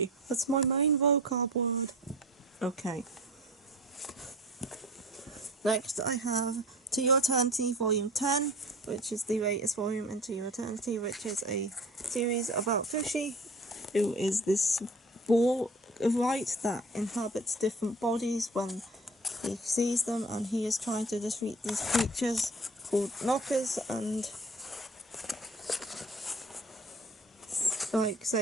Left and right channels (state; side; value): normal; both; correlation 0.42